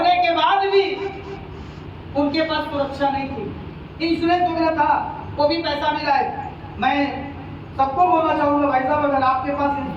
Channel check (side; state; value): both; identical; correlation 1.00